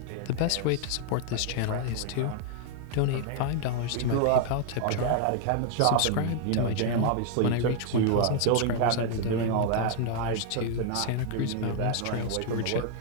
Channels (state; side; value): different; both; correlation 0.00